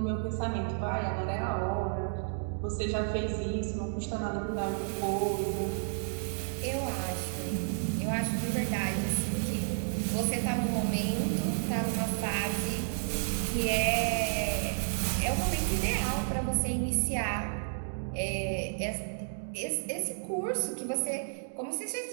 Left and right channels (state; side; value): silent; left; digital silence